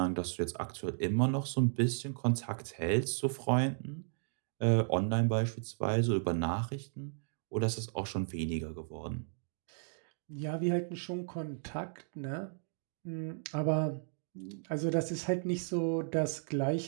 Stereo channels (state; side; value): silent; left; digital silence